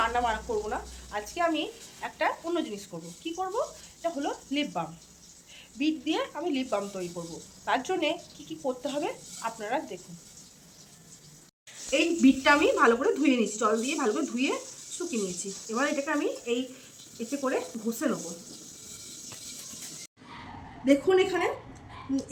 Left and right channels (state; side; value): identical; both; correlation 1.00